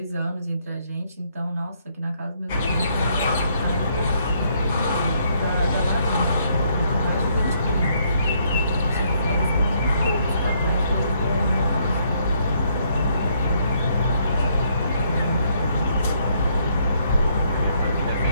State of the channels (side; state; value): both; inverted; correlation -0.71